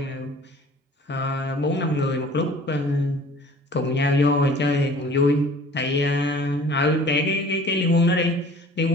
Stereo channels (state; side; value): normal; both; correlation 0.48